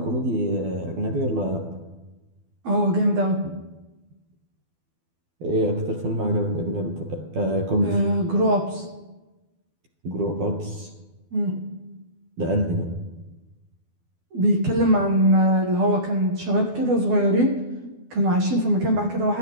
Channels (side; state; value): left; late; 12 ms